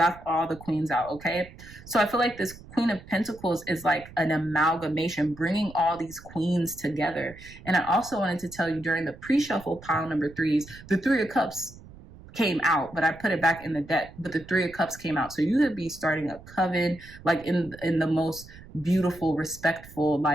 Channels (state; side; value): noise; right; rumble, 19 dB below the sound